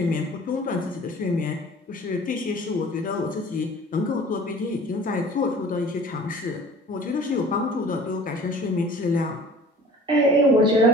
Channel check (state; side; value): normal; both; correlation 0.46